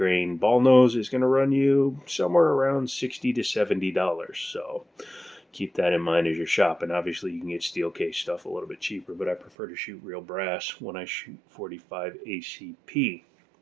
ball nose is going to run you somewhere around $60 to $70. So keep that in mind as you're shopping. Obviously, you can get steel case stuff a little bit cheaper, but I prefer to shoot real brass when I shoot 45 ACP.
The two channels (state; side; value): drops out; left; at 9.5 s